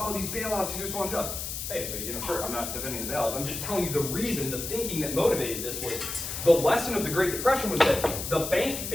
these bailouts, these are so unjust. Hey, but sure, I'm not defending the bailouts. I'm just telling you the reason, the thinking that motivated this was the lesson of the Great Depression was that the bank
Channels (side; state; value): left; noise; hiss, 5 dB below the sound